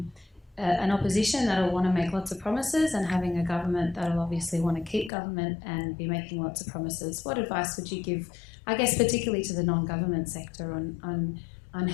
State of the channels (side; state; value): right; drops out; at 5.1 s